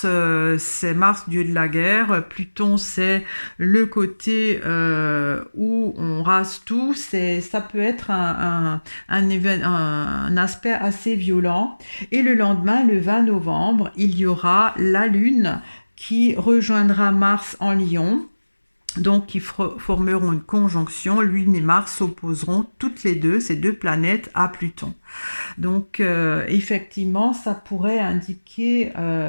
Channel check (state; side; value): inverted; both; correlation -1.00